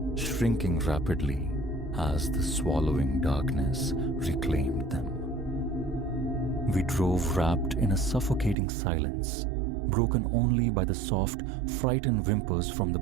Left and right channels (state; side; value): drops out; left; at 8.6 s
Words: shrinking rapidly as the swallowing darkness reclaimed them. We drove wrapped in a suffocating silence, broken only by the soft, frightened whimpers from the